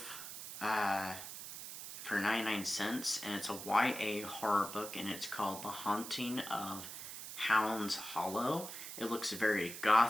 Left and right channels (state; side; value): noise; right; hiss, 9 dB below the sound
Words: For 99 cents, and it's a YA horror book, and it's called The Haunting of Hounds Hollow. It looks very